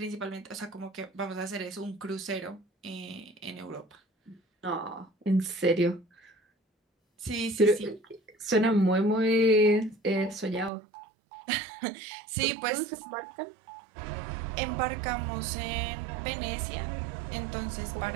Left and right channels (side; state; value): left; drops out; at 10.7 s